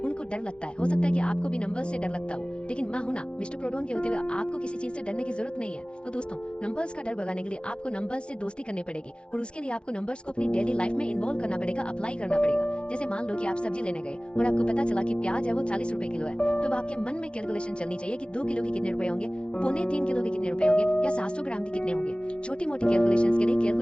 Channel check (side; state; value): right; late; 0.055 ms